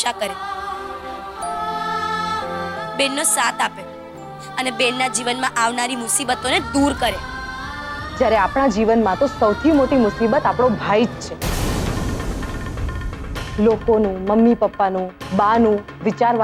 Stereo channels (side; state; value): both; identical; correlation 1.00